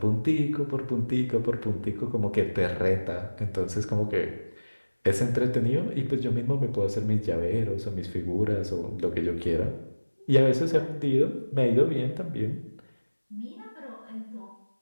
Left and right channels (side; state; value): both; inverted; correlation -1.00